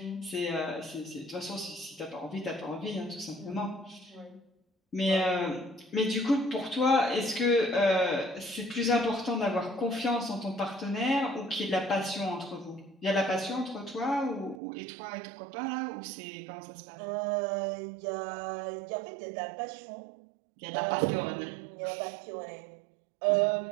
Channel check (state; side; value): drops out; left; at 14.6 s